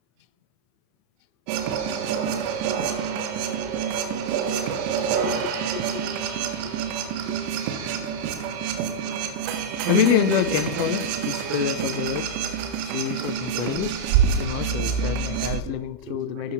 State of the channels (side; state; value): left; late; 33 ms